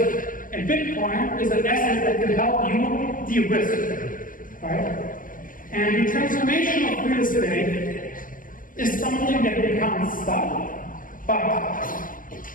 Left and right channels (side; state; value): right; late; 0.40 ms